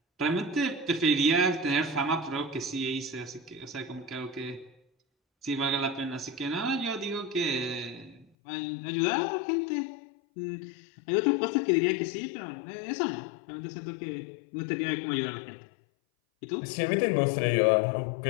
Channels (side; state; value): right; drops out; at 8.2 s